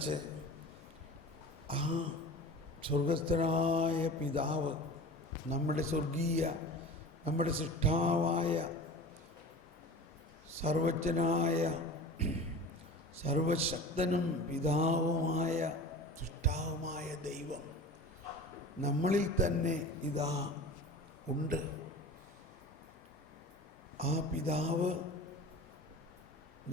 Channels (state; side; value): normal; both; correlation 0.36